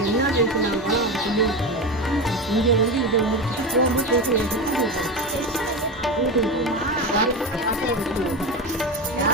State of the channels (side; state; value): both; normal; correlation 0.20